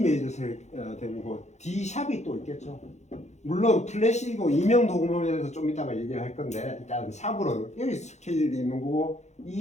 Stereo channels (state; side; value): late; right; 0.33 ms